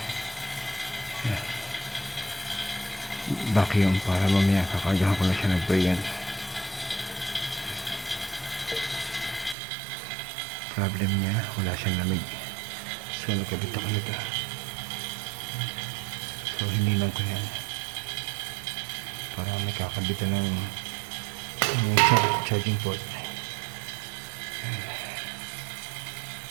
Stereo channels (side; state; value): left; drops out; at 9.6 s